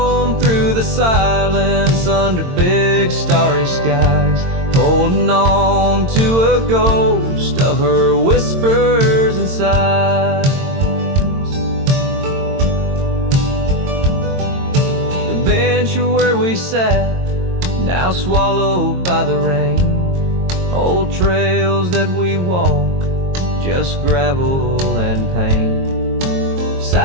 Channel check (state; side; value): late; left; 22 ms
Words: through the silence under big starry skies, holding on to a ghost of her whispers and sighs. The bench where we sat, now swallowed by the rain. Old trails that we walk, just gravel and pain.